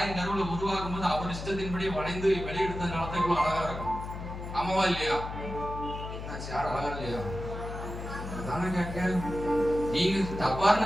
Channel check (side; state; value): left; noise; hum, 8 dB below the sound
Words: கருவுல உருவாகும் போது அவர் இஷ்டத்தின்படி வணைந்து வெளியெடுத்ததுனால தான் இவ்வளவு அழகா இருக்கும். ஆமாவா இல்லையா? என்னாச்சு, யாரும் அழகா இல்லையா? அதான கேட்க, நீங்க